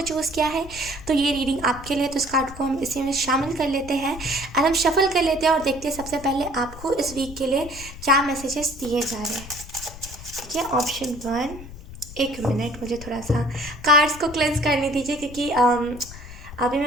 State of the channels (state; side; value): noise; left; rumble, 14 dB below the sound